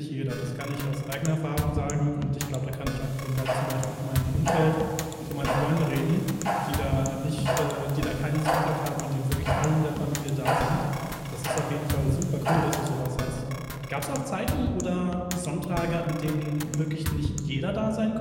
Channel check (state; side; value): identical; both; correlation 1.00